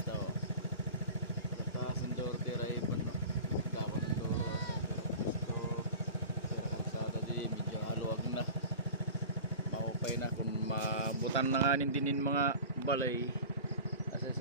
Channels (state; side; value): inverted; both; correlation -0.37